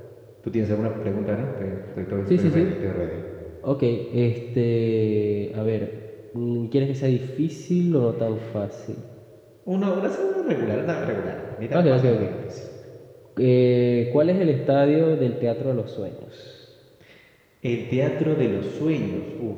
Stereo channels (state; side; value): identical; both; correlation 1.00